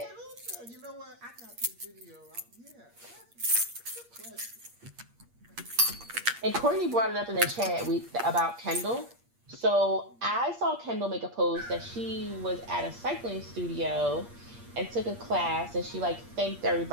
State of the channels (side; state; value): left; late; 8.5 ms